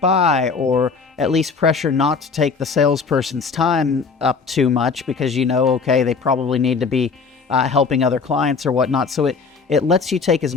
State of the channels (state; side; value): quieter; right; 5.0 dB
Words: or at least pressure not to take the salesperson's time up too much, because okay, they probably need to be helping other clients or whatnot. So it lets you take as